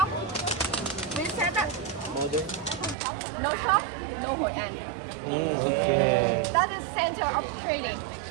We said that no shop, no Hoi An. Okay. That is center of trading.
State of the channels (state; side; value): drops out; left; at 3.0 s